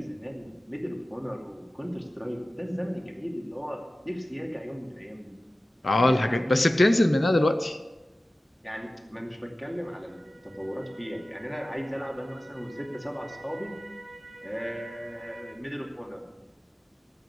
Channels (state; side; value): normal; both; correlation 0.96